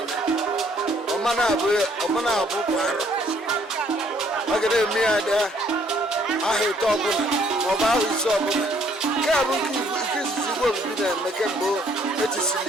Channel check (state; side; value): normal; both; correlation 0.64